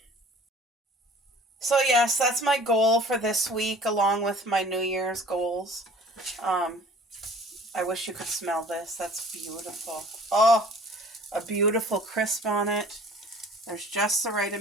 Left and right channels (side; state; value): both; normal; correlation 0.48